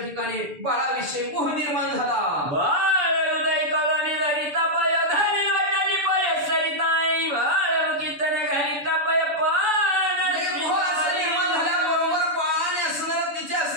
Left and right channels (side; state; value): left; late; 6.9 ms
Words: ठिकाणी बाळाविषयी मोह निर्माण झाला. बाळ हृदय कवळानी धरी तपय धरी लोटानी पय सरिताई. बाळ मुखीतने घरी तपय मोह असं निर्माण झाल्याबरोबर बाळाने असणार तिच्या